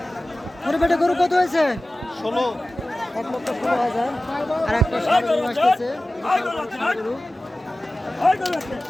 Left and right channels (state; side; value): normal; both; correlation 0.96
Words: মুরব্বী এটা গরু কত হয়েছে? 1,16,000। আর একটা গরু আসতেছে গরু।